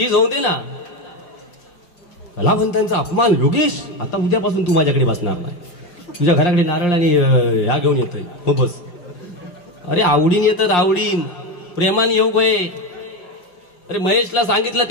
होऊ दे ना. कलावंतांचा अपमान. योगेश, आता उद्यापासून तू माझ्याकडे बसणार नाही. तुझ्या घराकडे नारळ आणि ह्या घेऊन येतोय. हो बस. अरे आवडीन येतात, आवडीन प्रेमाने येऊ गये. अरे महेशला सांगितलं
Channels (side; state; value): right; late; 5.7 ms